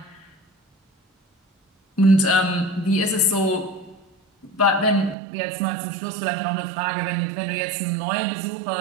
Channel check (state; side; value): drops out; left; at 5.2 s